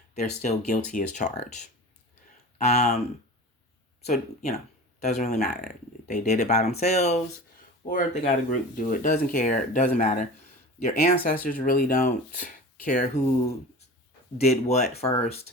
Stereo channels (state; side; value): normal; both; correlation 0.35